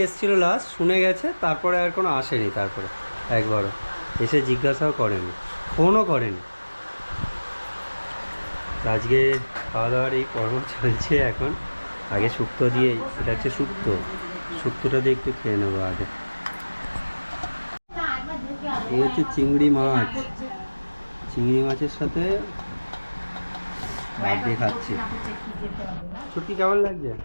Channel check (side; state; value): both; inverted; correlation -1.00